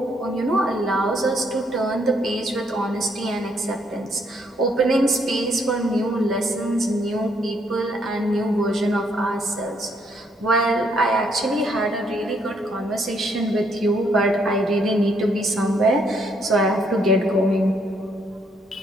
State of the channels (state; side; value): normal; both; correlation 0.71